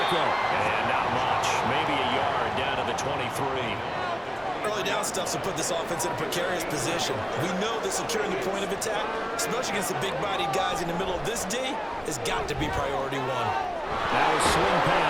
And not much. Maybe a yard down to the 23. Early down stuff to put this offense in a precarious position. We know that securing the point of attack, especially against the big-bodied guys in the middle of this D, has got to be priority one. Now a swing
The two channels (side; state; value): both; identical; correlation 1.00